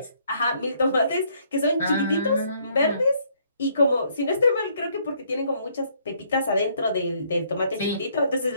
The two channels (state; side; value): inverted; both; correlation -0.67